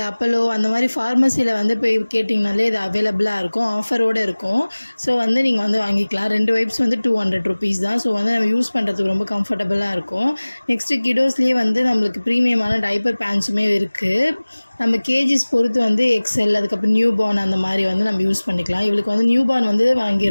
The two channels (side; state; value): both; inverted; correlation -1.00